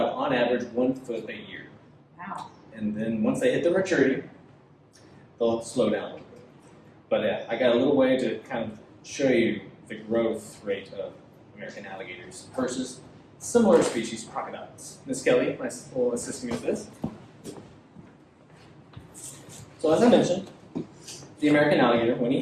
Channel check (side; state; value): both; identical; correlation 1.00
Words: on average, 1 foot a year. Wow. And then once they hit their maturity, they'll slow down a little bit. But I got a little way to kind of show you the growth rate of American alligators versus similar species, crocodiles. Miss Kelly will assist me with this. So as I mentioned, the American alligator, when he